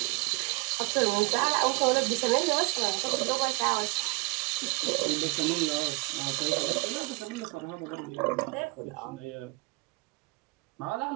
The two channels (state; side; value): quieter; left; 27.1 dB